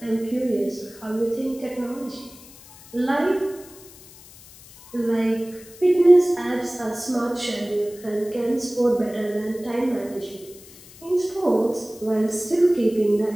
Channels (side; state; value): left; noise; hiss, 21 dB below the sound